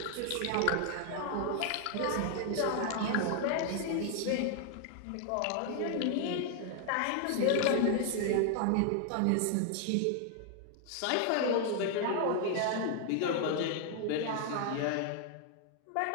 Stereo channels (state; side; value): different; both; correlation 0.00